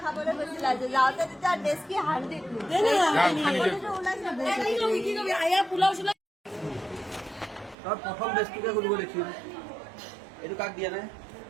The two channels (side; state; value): left; drops out; at 7.8 s